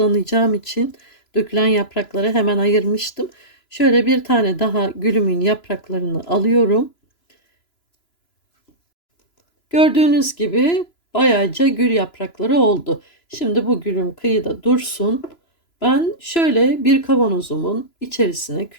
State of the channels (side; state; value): right; late; 3.0 ms